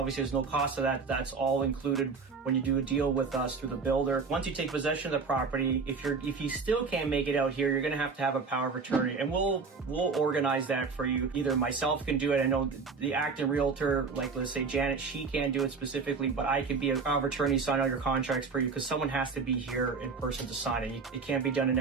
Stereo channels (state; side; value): quieter; left; 4.8 dB